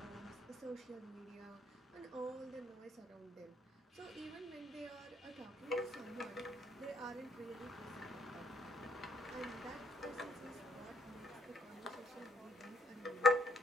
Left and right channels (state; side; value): normal; both; correlation 0.67